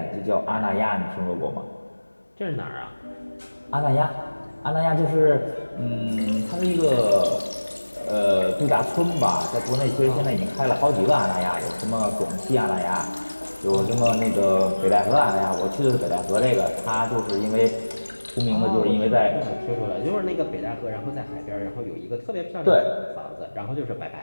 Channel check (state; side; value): inverted; both; correlation -1.00